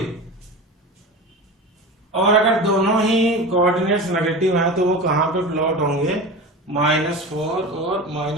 और अगर दोनों ही कोऑर्डिनेट्स नेगेटिव हैं तो वो कहाँ पे प्लॉट होंगे, -4 और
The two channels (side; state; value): both; normal; correlation 0.30